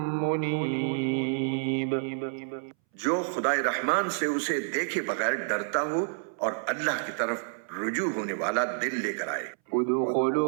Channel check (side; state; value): left; silent; 59 dB below the other